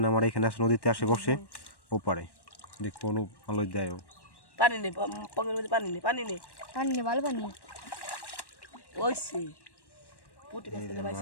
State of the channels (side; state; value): right; late; 1.1 ms